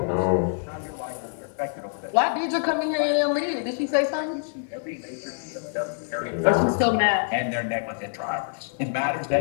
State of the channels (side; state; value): right; silent; digital silence